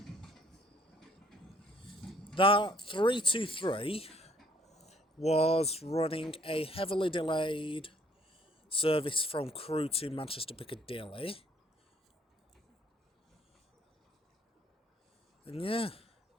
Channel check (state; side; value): normal; both; correlation 0.62